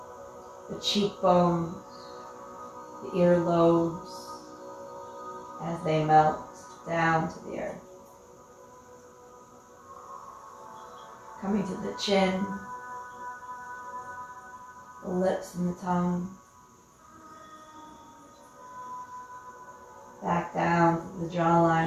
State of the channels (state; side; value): identical; both; correlation 1.00